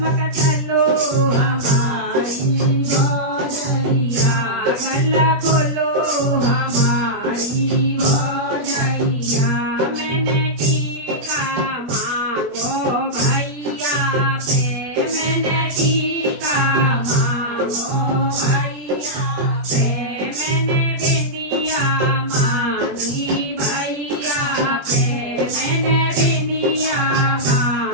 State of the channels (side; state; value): left; late; 20 ms